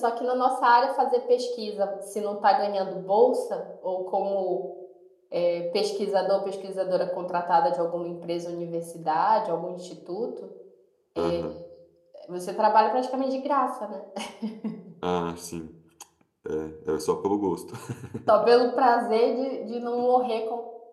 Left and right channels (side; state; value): both; identical; correlation 1.00